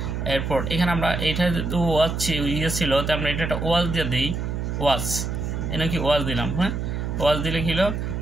এরপর এখানে আমরা এইটা ওয়াজ ছিল, তো আমরা এটা একটা ওয়াজ দিয়ে দিই, ওয়াজ, এটা কি ওয়াজ দিলাম, হ্যাঁ ওয়াজ দিলে কি হলো,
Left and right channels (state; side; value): noise; right; hum, 3 dB below the sound